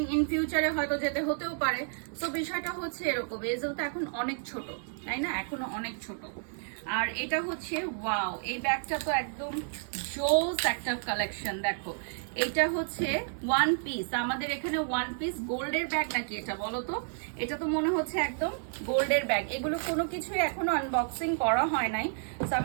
ইন ফিউচারে হয়তো যেতে হতেও পারে। তো বিষয়টা হচ্ছে এরকম, এজেল তো এখন অনেক ছোট, তাই না? এখনো অনেক ছোট। আর এটা হচ্ছে ওয়াও, এই ব্যাগটা তো একদম জোস একটা কালেকশন। দেখো, এটা হচ্ছে ওয়ান পিস, আমাদের এখানে ওয়ান পিস গোল্ডের ব্যাগ নাকি এটা বলো তো? এটা তো মনে হচ্ছে একদম গোল্ডের ব্যাগ। এগুলো কোনো কিছুই এখনো আনবক্সিং করা হয় নাই, তো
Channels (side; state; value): left; silent; digital silence